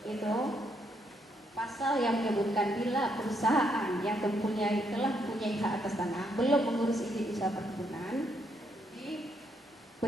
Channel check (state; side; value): normal; both; correlation 0.75